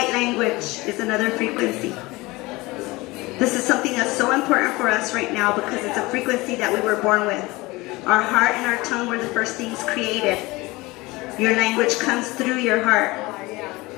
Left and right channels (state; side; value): quieter; right; 21.8 dB